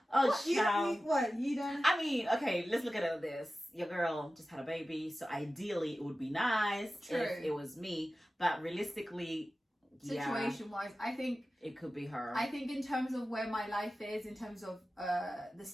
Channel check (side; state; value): both; normal; correlation 0.95